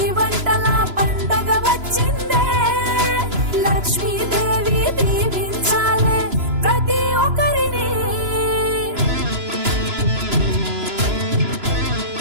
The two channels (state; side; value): late; left; 2.9 ms